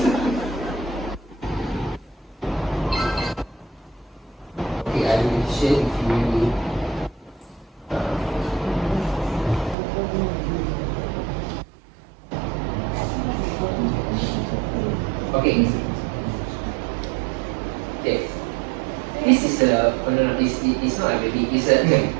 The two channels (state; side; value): drops out; left; at 9.8 s